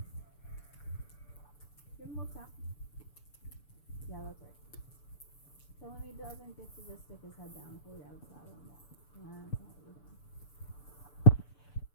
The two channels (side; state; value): right; late; 6.9 ms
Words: Give him a little tap. Yeah, that's right. Tell him he doesn't get to just stick his head down and pull you out of the saddle and walk. That's not what we're doing.